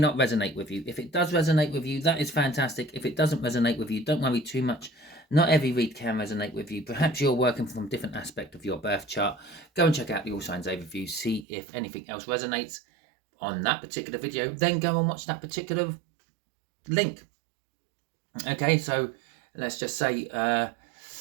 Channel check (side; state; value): left; drops out; at 11.5 s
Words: resonate with you. If it does resonate with you, that is fantastic. If it doesn't resonate with you, don't worry too much. Not every read can resonate with you. Perhaps you're working from a different aspect of your birth chart. Go and check out the All Signs Overview. See if anything else resonates on that particular video. Then go and watch that particular link. Okay, so let's just say, I